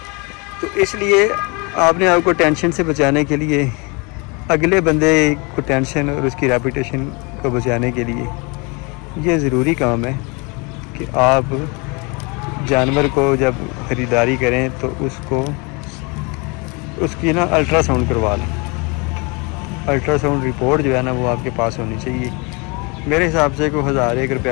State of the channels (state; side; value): quieter; right; 29.6 dB